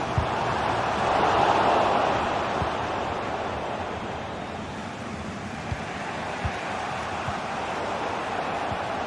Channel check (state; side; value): identical; both; correlation 1.00